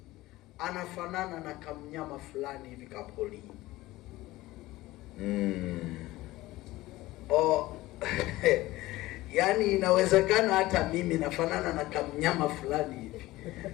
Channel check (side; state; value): right; quieter; 18.0 dB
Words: anafanana na kamnyama fulani hivi kapoli. Yaani inawezekana hata mimi nafanana na kamnyama fulani hivi.